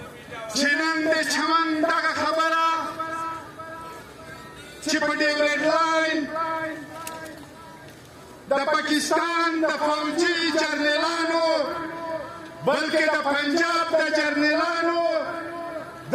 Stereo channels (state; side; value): identical; both; correlation 1.00